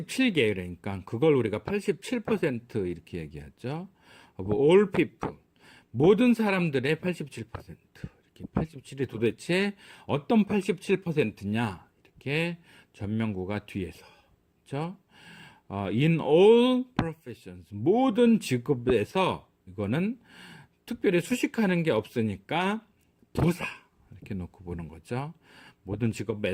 그러니까 그걸 우리가 87% 이렇게 얘기하죠. of all people, 모든 사람들의 87%. 이렇게 87이 도대체 어떤 87%냐? 이렇게 전명구가 뒤에서. 그렇죠? In all professions, 모든 직업에서, 이거는 특별히 수식하는 게 없으니까 부사 이렇게 놓고 보는 거죠. 모든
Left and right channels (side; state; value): both; identical; correlation 1.00